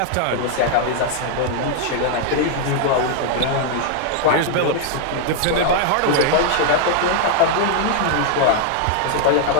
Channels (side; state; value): both; different; correlation 0.00